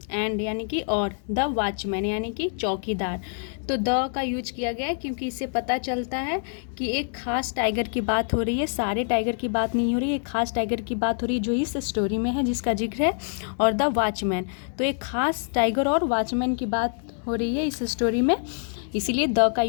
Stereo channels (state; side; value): silent; right; 61 dB below the other